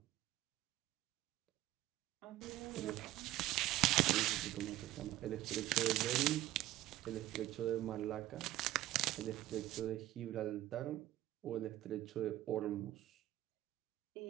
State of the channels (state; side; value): quieter; left; 14.9 dB